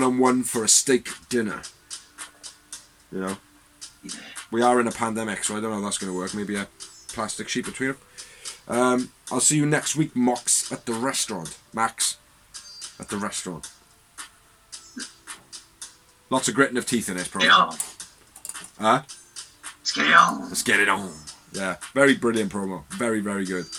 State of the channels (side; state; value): both; identical; correlation 1.00